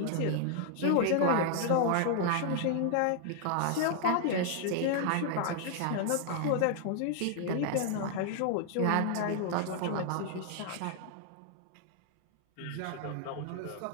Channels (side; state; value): both; different; correlation 0.00